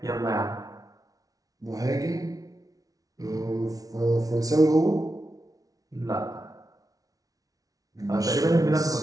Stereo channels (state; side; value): late; left; 0.18 ms